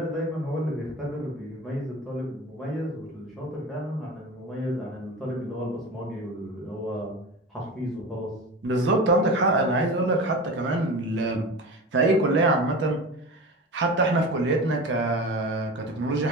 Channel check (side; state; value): both; normal; correlation 0.31